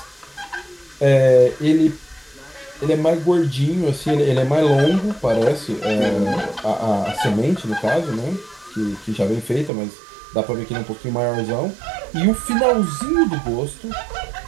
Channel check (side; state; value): left; drops out; at 9.7 s